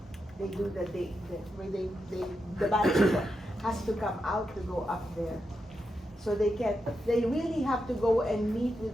they do the bachelor has to come out to go up there. So they really have to go and meet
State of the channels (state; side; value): normal; both; correlation 0.86